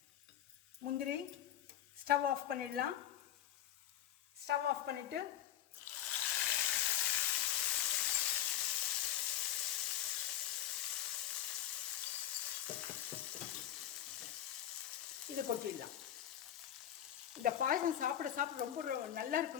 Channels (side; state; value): right; quieter; 11.5 dB